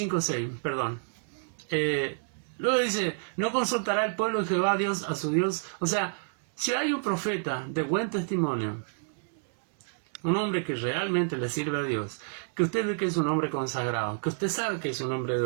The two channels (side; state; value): left; silent; 59 dB below the other